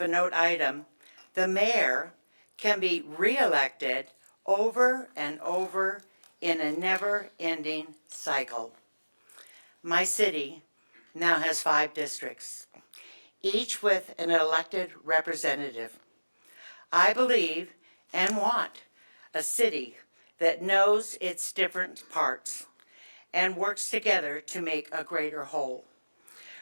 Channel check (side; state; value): both; inverted; correlation -1.00